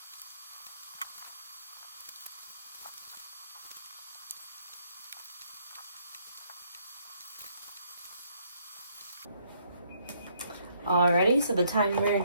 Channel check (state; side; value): inverted; both; correlation -0.68